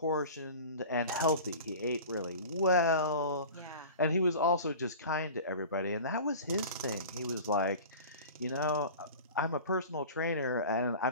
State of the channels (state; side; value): inverted; both; correlation -0.37